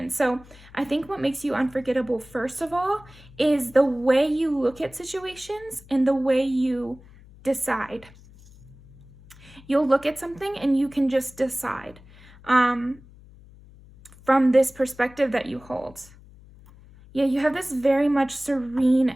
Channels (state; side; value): noise; left; hum, 23 dB below the sound